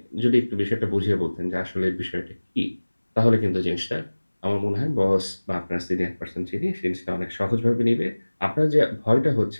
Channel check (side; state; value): both; inverted; correlation -1.00